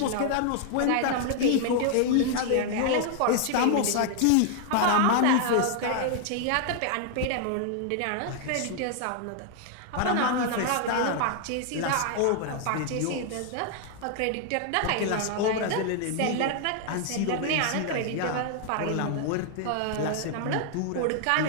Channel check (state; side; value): different; both; correlation 0.00